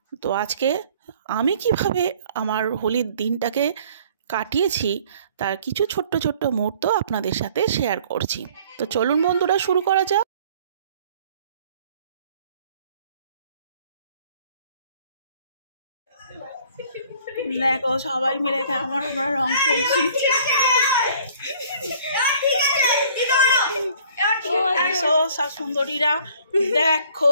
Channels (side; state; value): both; inverted; correlation -0.55